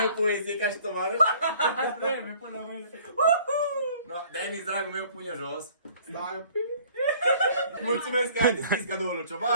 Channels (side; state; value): both; inverted; correlation -0.54